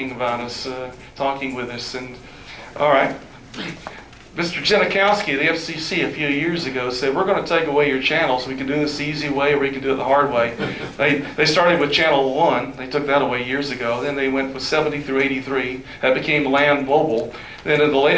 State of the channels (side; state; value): both; identical; correlation 1.00